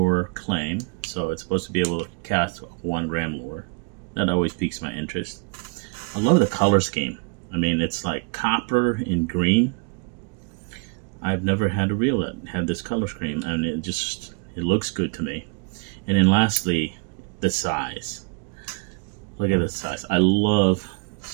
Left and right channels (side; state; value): left; quieter; 34.7 dB